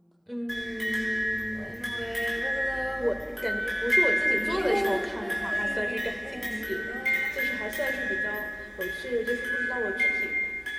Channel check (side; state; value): both; identical; correlation 1.00